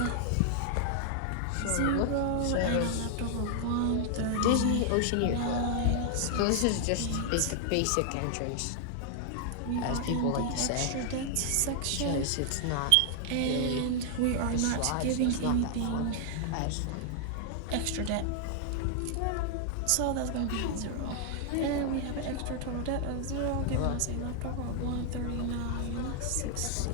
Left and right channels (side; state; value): both; different; correlation 0.00